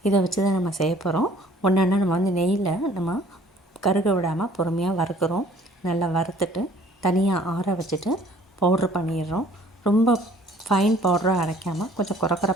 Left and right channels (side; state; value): both; normal; correlation 0.55